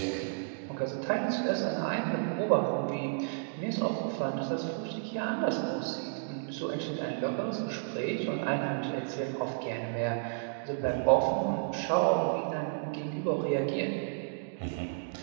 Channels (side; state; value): left; silent; digital silence